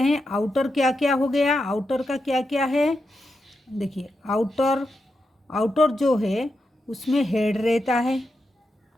हैं। आउटर क्या क्या हो गया? आउटर का क्या क्या है? देखिए आउटर जो है उसमें हेड रहता है,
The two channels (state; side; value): normal; both; correlation 0.87